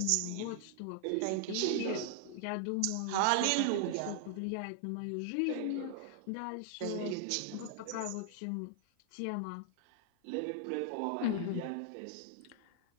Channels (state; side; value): different; both; correlation 0.00